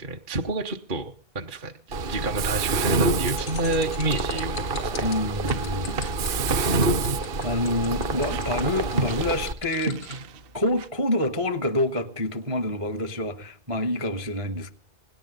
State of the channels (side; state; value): left; late; 2.5 ms